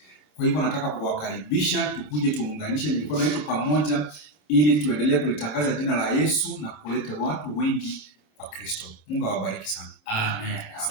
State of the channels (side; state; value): right; late; 26 ms